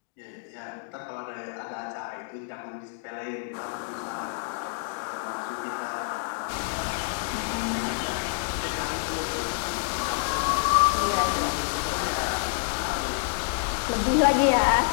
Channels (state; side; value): silent; right; digital silence